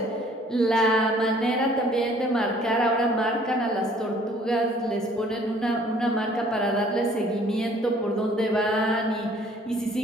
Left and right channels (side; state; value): both; normal; correlation 0.57